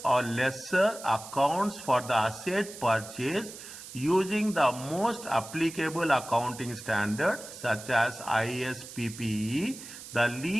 or lessor accounts for the asset purchase using the most applicable accounting standard such as ISPPE. The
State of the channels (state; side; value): noise; right; hiss, 14 dB below the sound